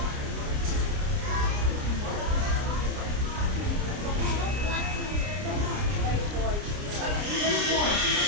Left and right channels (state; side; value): late; left; 29 ms